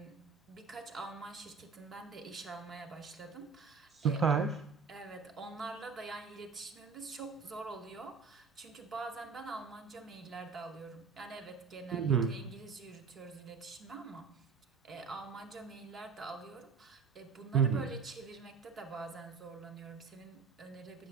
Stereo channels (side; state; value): left; quieter; 5.4 dB